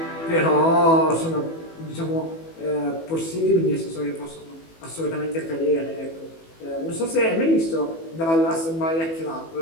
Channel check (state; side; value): late; right; 18 ms